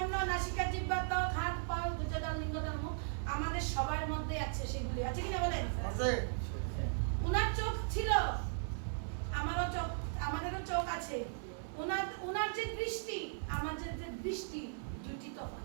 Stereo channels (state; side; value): silent; left; 53 dB below the other